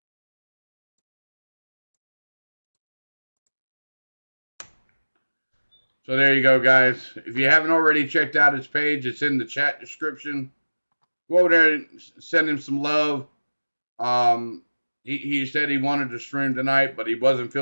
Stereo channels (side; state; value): both; inverted; correlation -1.00